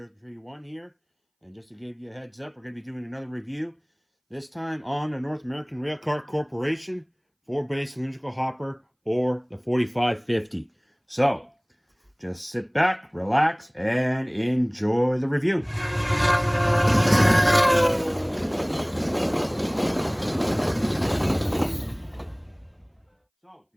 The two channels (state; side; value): identical; both; correlation 1.00